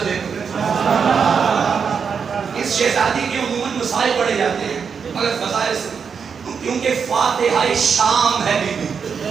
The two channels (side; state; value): left; quieter; 6.3 dB